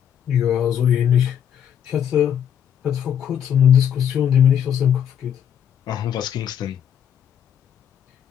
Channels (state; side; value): quieter; right; 9.1 dB